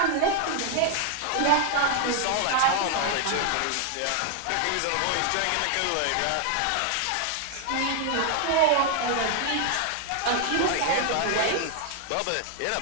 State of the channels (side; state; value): both; different; correlation 0.00